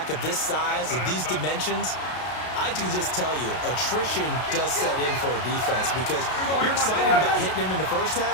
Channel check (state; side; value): late; right; 32 ms